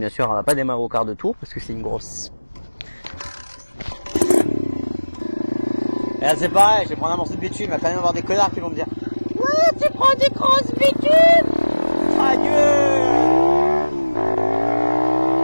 sûr, elle va pas démarrer au quart de tour, parce que c'est une grosse. Et là, c'est pareil, je vais prendre un morceau de bitume, il va quand même avoir des connards qui vont me dire « Ouais, tu prends des grosses bitumes !» Ta gueule.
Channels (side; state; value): both; inverted; correlation -1.00